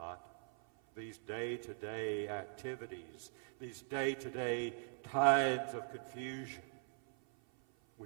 These day-to-day activities, these day-to-day times of confusion.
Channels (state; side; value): silent; left; 50 dB below the other